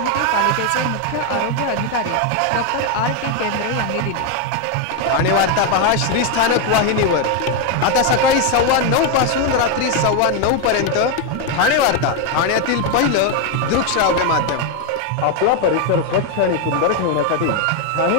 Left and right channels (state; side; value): different; both; correlation 0.01